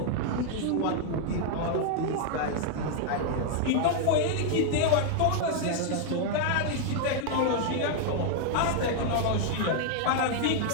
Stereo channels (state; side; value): different; both; correlation 0.00